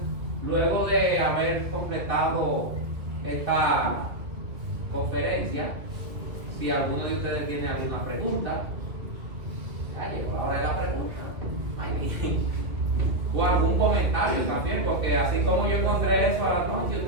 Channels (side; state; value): left; late; 2.3 ms